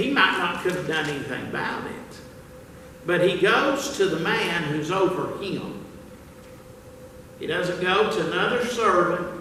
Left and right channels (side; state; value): both; identical; correlation 1.00